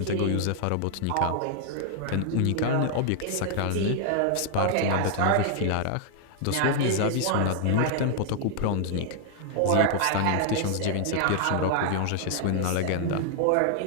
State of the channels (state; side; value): different; both; correlation 0.00